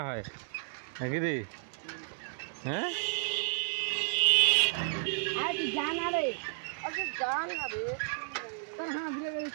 হয় নাকি রে হ্যাঁ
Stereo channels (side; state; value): left; silent; digital silence